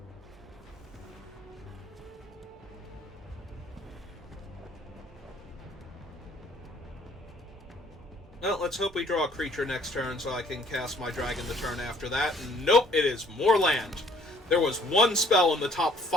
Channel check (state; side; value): normal; both; correlation 0.60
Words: Well, let's hope we draw a creature next turn so I can cast my dragon the turn after that. Nope, it is more land. There was 1 spell in the top